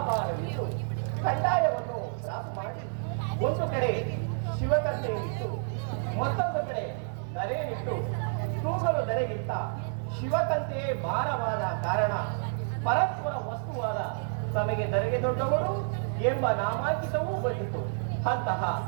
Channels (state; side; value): silent; left; 58 dB below the other